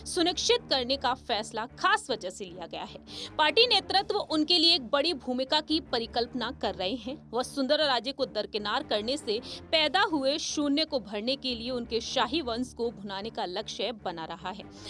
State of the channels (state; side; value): identical; both; correlation 1.00